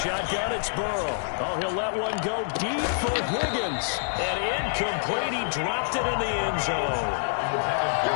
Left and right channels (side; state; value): right; silent; digital silence